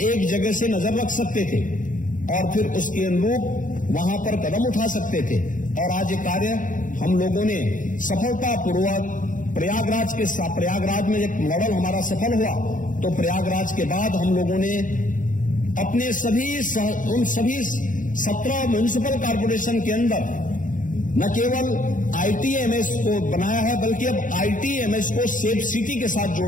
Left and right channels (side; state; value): right; late; 0.38 ms